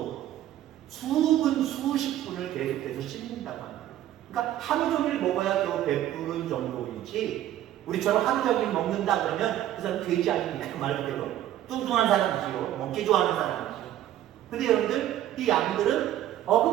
수십 분을 계속해서 씹는다고 합니다. 그러니까 하루 종일 먹어야 겨우 배부른 정도이지 우리처럼 하루 종일 먹는다 그러면 그 사람 돼지 아닙니까? 말 그대로. 뚱뚱한 사람이지요. 먹기 좋아하는 사람이지요. 근데 여러분들, 이 양들은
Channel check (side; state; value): left; quieter; 12.5 dB